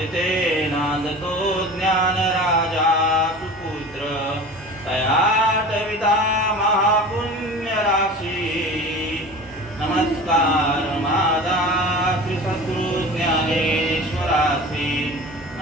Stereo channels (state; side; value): normal; both; correlation 0.37